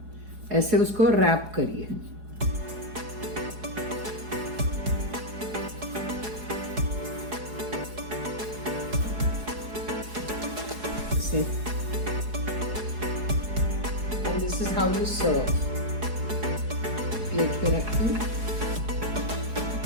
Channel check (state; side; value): late; left; 4.8 ms